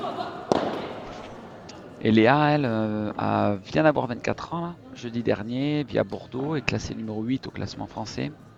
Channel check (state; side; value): identical; both; correlation 1.00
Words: Et Léa, elle, vient d'avoir 24 ans, là, jeudi dernier, via Bordeaux, est classée numéro 8 au classement français.